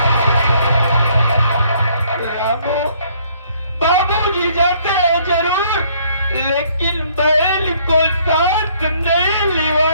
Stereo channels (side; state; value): both; inverted; correlation -0.63